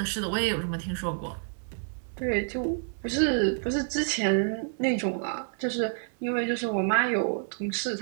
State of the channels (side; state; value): left; silent; digital silence